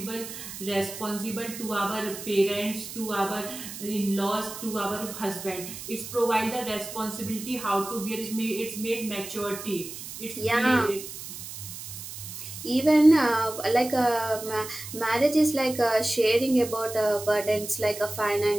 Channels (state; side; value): noise; right; hiss, 11 dB below the sound